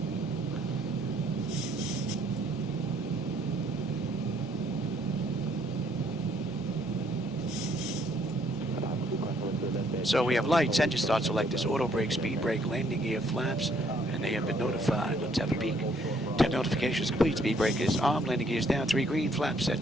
So we have lights, engine start selectors, auto brake, speed brake, landing gear, flaps, and they have been notified. Let's have a peek. 10 notifications complete, speed brake is on, landing gear is down, 3 green, flaps set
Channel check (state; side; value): normal; both; correlation 0.66